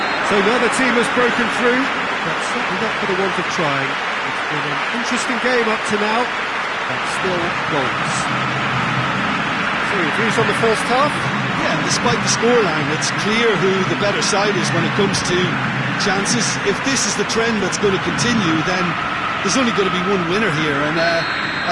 So now the team has broken through, but certainly not for the want of trying. It's been an interesting game up to now, but still goals. So, views on the first half? Yeah, despite the scoreline, it's clear who the better side is when it comes to chances. If this is the trend that's going to continue, then there's only going to be one winner here, and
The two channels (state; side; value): noise; right; rumble, 29 dB below the sound